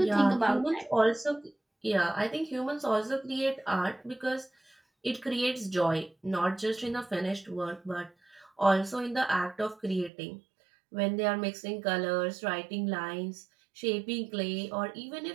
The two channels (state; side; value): drops out; left; at 10.1 s